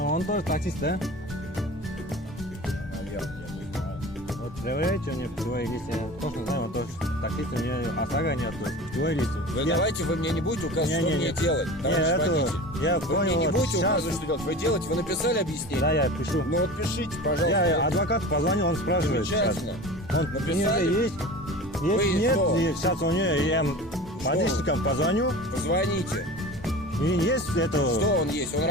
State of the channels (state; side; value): normal; both; correlation 0.35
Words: тоже таксист, да? Вот проверяйте у него путевые листы. Я точно знаю, он тоже таксист, у меня ОСАГО нет, путевые листы. Давайте вы мне не будете указывать, что мне делать, товарищ водитель. Я вы понял, мне не будете сейчас... указывать, что делать. Вы делаете, вы написали объяснение? Да, я пишу. Ну вот пишите, пожалуйста. Я адвокату позвонил, он спрашивает. Замечательно. Он Написали? есть? Если нет, что? и сейчас у нее я водительникам позвоню. Позвоните. И есть это... Что он есть? Он